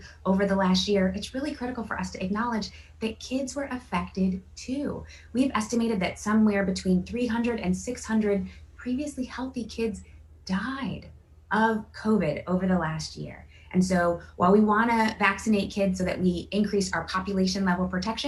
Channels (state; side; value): identical; both; correlation 1.00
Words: over the last year, it's really critical for us to acknowledge that kids were affected too. We've estimated that somewhere between 300 and 600 previously healthy kids died of COVID over the last year. And so while we want to vaccinate kids so that we increase our population level